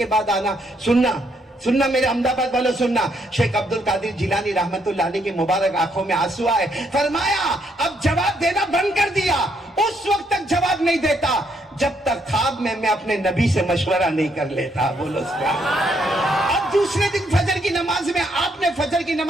بعد آنا؟ سننا میرے احمد آباد والوں سننا. شیخ عبد القادر جیلانی رحمت اللہ علیہ کی مبارک آنکھوں میں آنسو آئے. فرمایا اب جواب دینا بند کر دیا. اس وقت تک جواب نہیں دیتا جب تک خواب میں اپنے نبی سے مشورہ نہیں کر لیتا. بولو سبحان اللہ. اب دوسرے دن فجر کی نماز میں آپ نے فجر کی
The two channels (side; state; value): both; normal; correlation 0.73